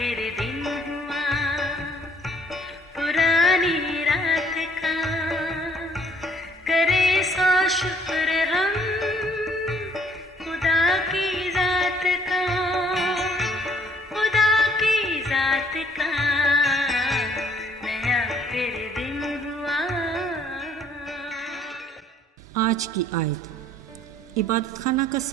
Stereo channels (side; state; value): both; normal; correlation 0.62